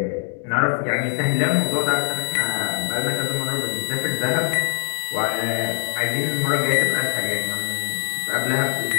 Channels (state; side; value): silent; right; digital silence